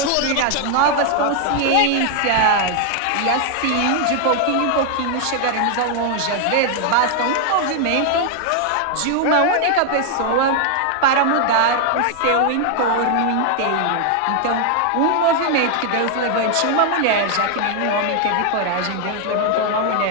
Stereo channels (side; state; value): both; different; correlation 0.00